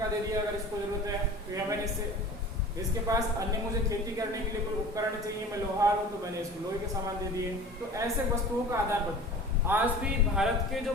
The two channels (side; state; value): both; normal; correlation 0.40